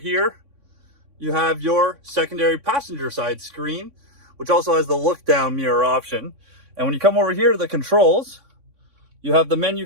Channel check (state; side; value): late; left; 3.6 ms